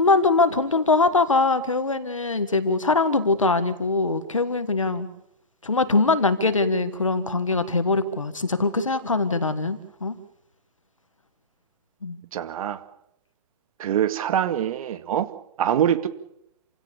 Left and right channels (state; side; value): normal; both; correlation -0.14